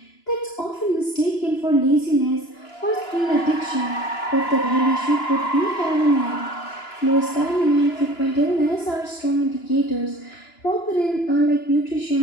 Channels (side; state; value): right; late; 2.9 ms